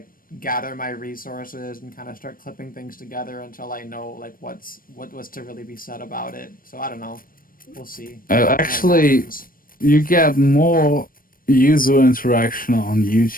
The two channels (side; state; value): right; late; 0.41 ms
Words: gather my resources and kind of start clipping things together until I know like what was to really be said about it. So I don't know. We'll see what Actually, happens. you get more user interaction on